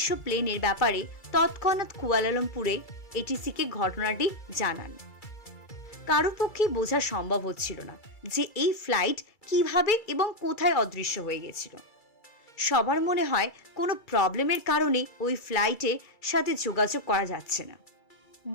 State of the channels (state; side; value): late; right; 2.3 ms